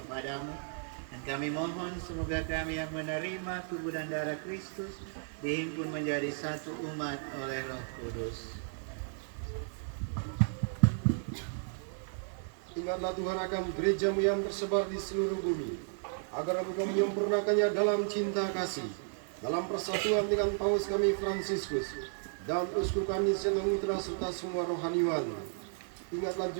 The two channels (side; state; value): left; silent; 55 dB below the other